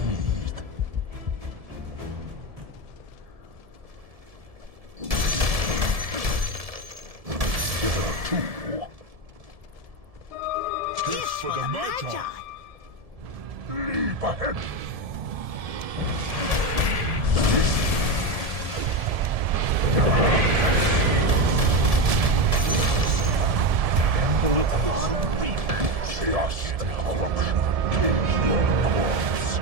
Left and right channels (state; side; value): late; left; 1.7 ms